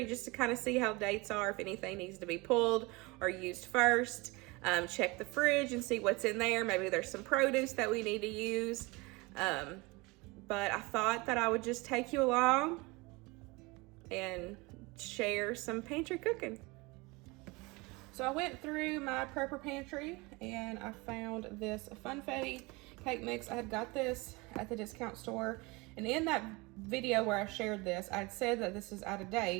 just to kind of see how dates are, if anything needs to be pulled or used first. Check the fridge and see what's in there. Maybe there's some produce that we need to use. But I thought that I would just take you along and share some pantry cooking. So I went through my prepper pantry and I found this funfetti cake mix. I had got this at the discount store, and in that video where I shared this, I'd said that this is out of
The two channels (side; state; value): left; quieter; 25.0 dB